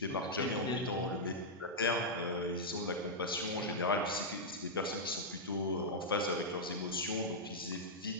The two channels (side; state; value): both; normal; correlation -0.07